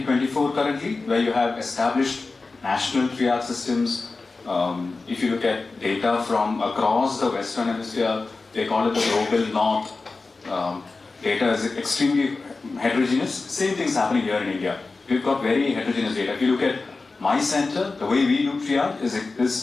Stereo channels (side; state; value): right; quieter; 3.8 dB